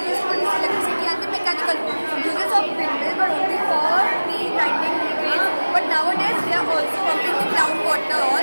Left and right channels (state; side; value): inverted; both; correlation -1.00